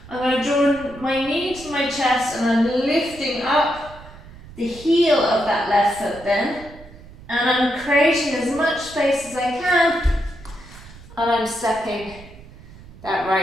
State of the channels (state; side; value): noise; right; rumble, 19 dB below the sound